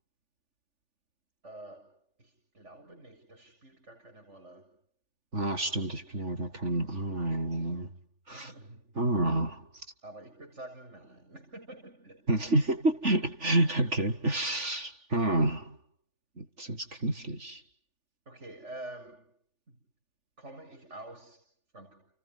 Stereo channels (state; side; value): late; left; 3.4 ms